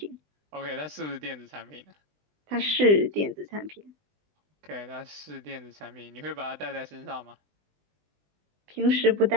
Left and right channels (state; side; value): late; left; 20 ms